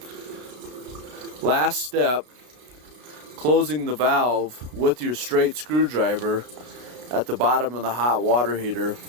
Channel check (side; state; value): left; late; 32 ms